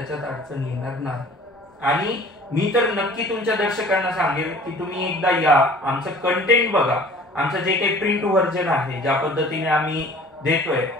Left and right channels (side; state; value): both; normal; correlation 0.48